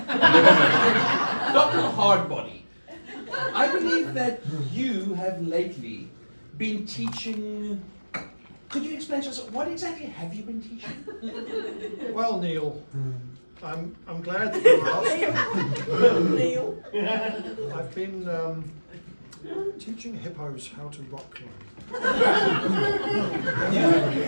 Dr. Hardbody, I believe that you have lately been teaching. Could you explain to us what exactly have you been teaching? Well, Neil, I'm glad that you asked. Neil. I've been teaching hippos how to rock climb. You've been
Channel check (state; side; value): inverted; both; correlation -1.00